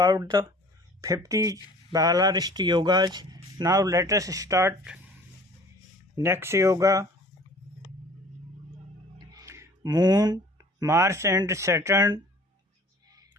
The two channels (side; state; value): both; normal; correlation 0.49